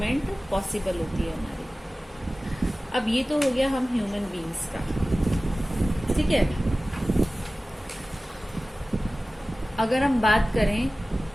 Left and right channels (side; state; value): both; normal; correlation 0.97